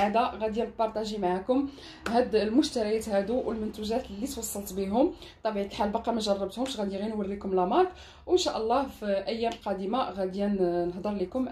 غادي نبارطاجي معكم هاد المشتريات هادو والمنتوجات اللي توصلت بهم. بطبيعه الحال باقا ما جربتهمش، غادي غير نوريكم لا مارك، وان شاء الله في ايام قادمه غادي نهضر لكم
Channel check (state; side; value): identical; both; correlation 1.00